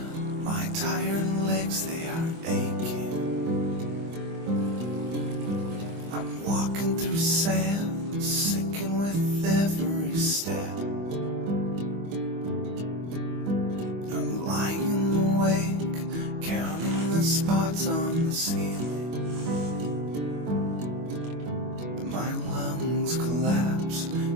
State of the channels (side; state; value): left; late; 25 ms